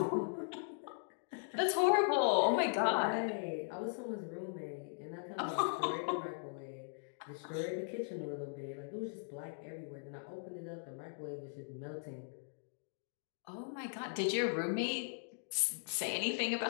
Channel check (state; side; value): silent; right; digital silence